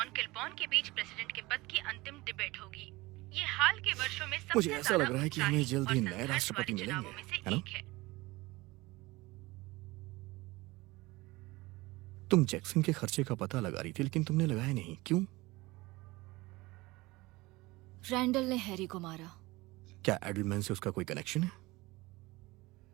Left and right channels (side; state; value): left; quieter; 21.3 dB